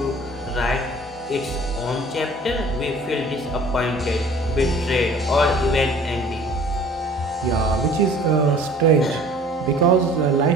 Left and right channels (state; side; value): normal; both; correlation 0.49